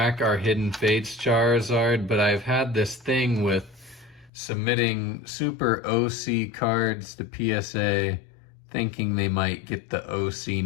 our Hidden Fates Charizard. But I've had this thing with submitting super OC cards to PSA thinking they might get the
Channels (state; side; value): drops out; right; at 4.3 s